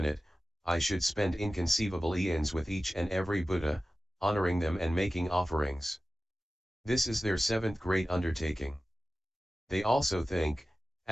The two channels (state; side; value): normal; both; correlation 0.95